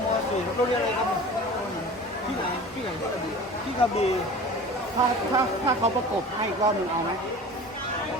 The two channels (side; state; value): both; normal; correlation 0.39